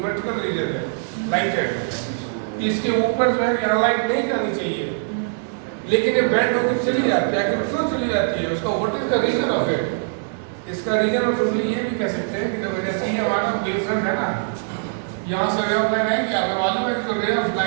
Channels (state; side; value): silent; left; 60 dB below the other